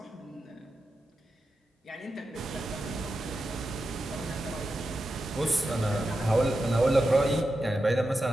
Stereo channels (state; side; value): normal; both; correlation 0.90